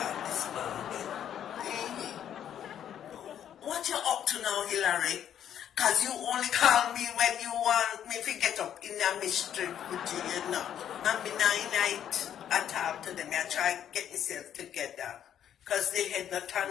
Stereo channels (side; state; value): right; quieter; 9.9 dB